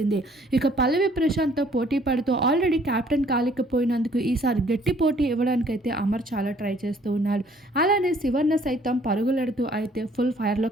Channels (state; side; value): normal; both; correlation 0.60